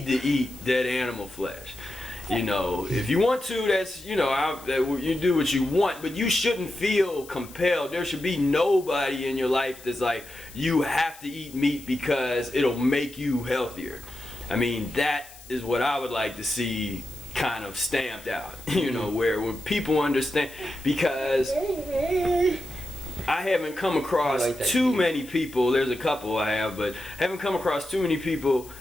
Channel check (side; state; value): left; noise; hiss, 19 dB below the sound